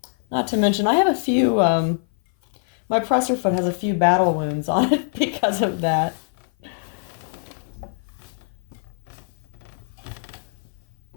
Not to mention, I have a few, my presser foot has a few battle wounds on it because of that.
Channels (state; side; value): silent; right; 57 dB below the other